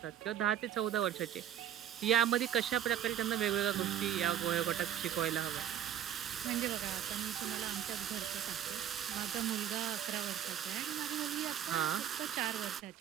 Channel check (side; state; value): left; quieter; 10.2 dB